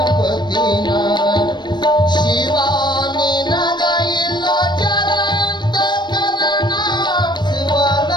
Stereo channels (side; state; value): right; late; 0.22 ms